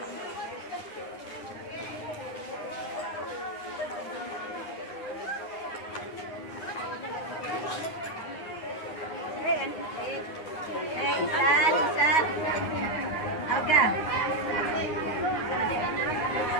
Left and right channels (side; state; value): right; late; 9.8 ms